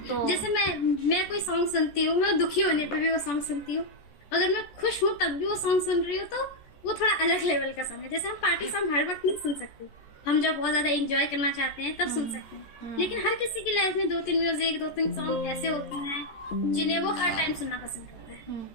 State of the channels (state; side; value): late; right; 14 ms